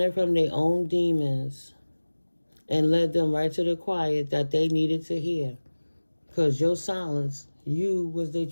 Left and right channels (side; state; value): both; inverted; correlation -1.00